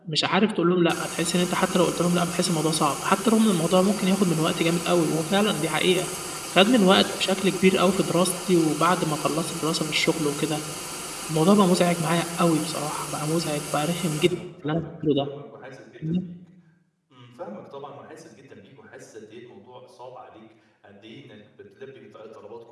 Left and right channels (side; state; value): both; identical; correlation 1.00